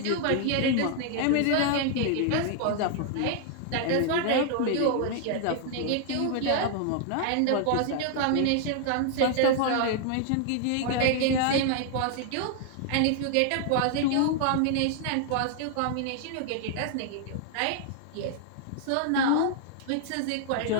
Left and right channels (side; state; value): both; different; correlation 0.00